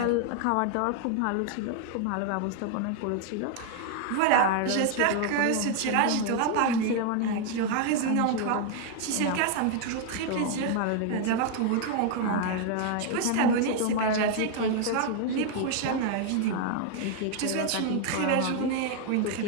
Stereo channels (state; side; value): different; both; correlation 0.00